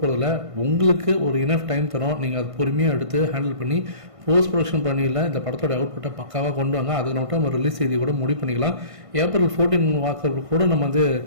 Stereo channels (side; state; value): left; late; 1.5 ms